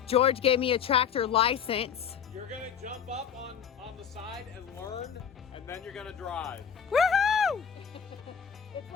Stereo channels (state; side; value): quieter; right; 7.7 dB